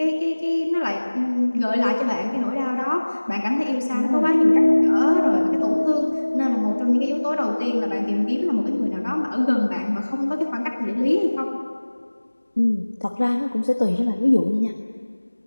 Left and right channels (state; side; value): inverted; both; correlation -1.00